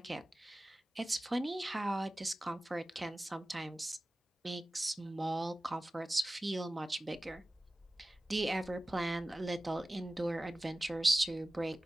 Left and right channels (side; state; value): both; normal; correlation 0.97